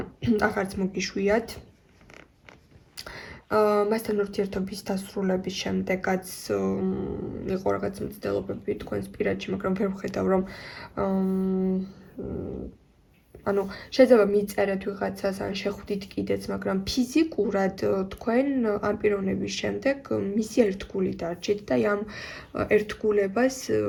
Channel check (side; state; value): both; identical; correlation 1.00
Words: აღარც მოგიშვიათ. მასთან ურთიერთობის დასრულების შემდეგაც იყო რაღაც მცდელობები თქვენს პირადში, მაგრამ ვერ ვხედავ, რომ ანუ შეიძლება მიწერეთ ვიღაცას, ან შეხვდით კიდეც, მაგრამ ფიზიკურად თქვენ ამ პიროვნების შემდეგ მისი ერთგული დარჩით და ამ ერთგულებას